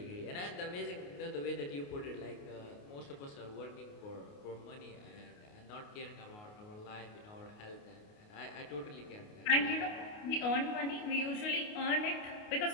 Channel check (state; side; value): late; right; 29 ms